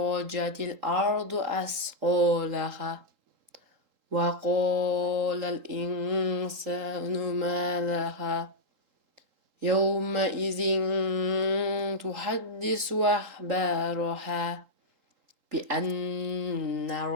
الأرض أثقالها وقال الإنسان ما لها يومئذ تحدث أخبارها بأن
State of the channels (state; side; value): late; left; 3.8 ms